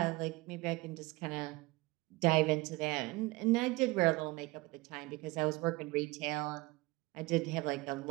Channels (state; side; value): quieter; left; 22.2 dB